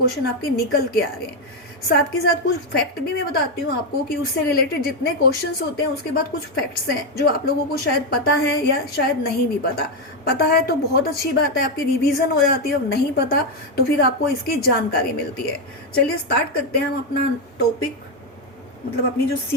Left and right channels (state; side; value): normal; both; correlation 0.05